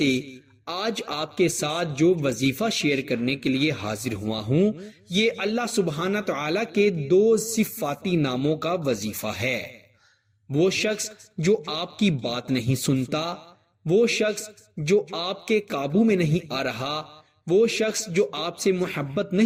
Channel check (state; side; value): identical; both; correlation 1.00